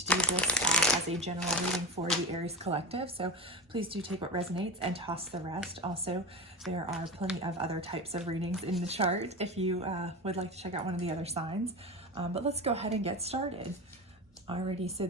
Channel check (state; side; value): normal; both; correlation 0.23